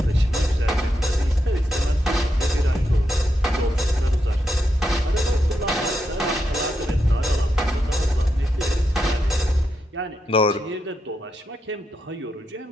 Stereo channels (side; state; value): both; normal; correlation 0.84